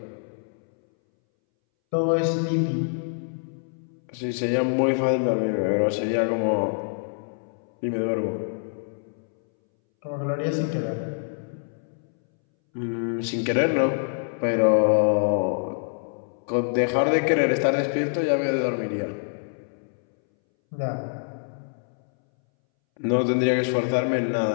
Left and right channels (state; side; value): silent; right; 61 dB below the other